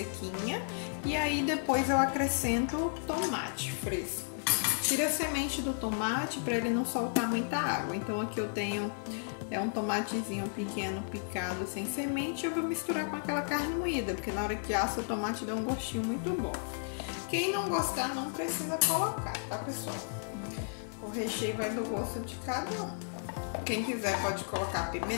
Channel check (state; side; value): silent; right; 56 dB below the other